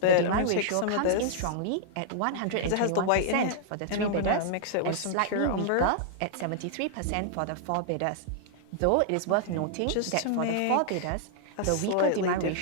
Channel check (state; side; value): different; both; correlation -0.01